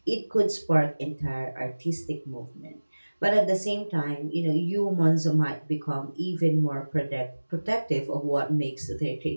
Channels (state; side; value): inverted; both; correlation -1.00